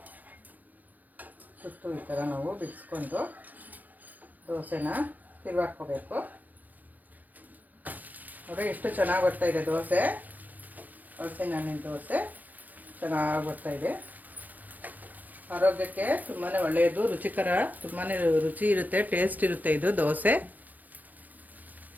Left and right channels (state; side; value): late; left; 0.085 ms